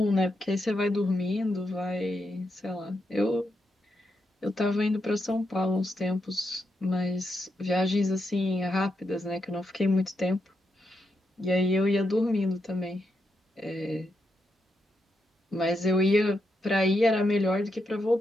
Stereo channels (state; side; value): normal; both; correlation 0.83